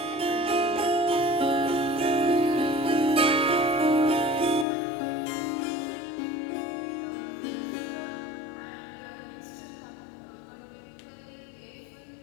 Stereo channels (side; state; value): right; drops out; at 4.7 s